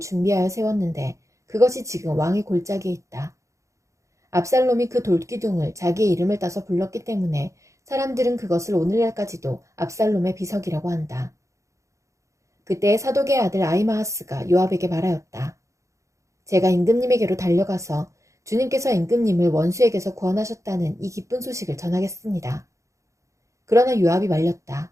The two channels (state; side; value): late; left; 0.15 ms